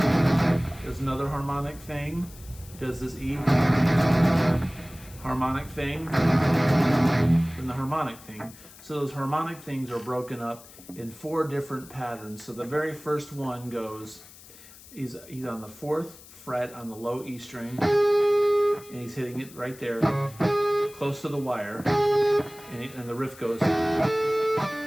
another harmonic thing. He does this E harmonic thing. Then the harmonic thing. So those harmonic things are broken up in 4 different patterns. So the very first one goes, he's on the 4th fret on the low E string, and he's hitting it right there, close to the wire, and the riff goes.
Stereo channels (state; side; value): noise; left; hiss, 20 dB below the sound